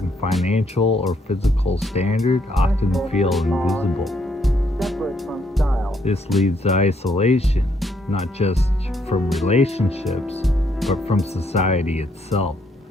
financial or physical standard often feel invisible. This leads to isolation, not just from relationships, but from society itself.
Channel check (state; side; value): normal; both; correlation 0.72